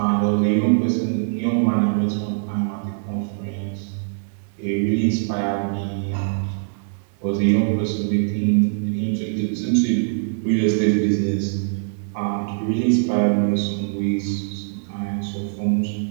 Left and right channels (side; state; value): left; silent; digital silence